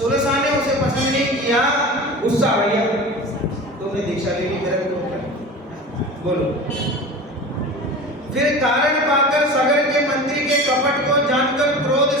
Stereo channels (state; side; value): normal; both; correlation 0.34